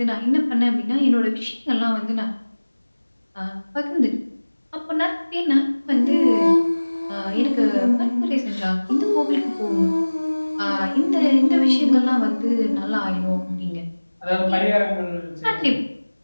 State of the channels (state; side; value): inverted; both; correlation -1.00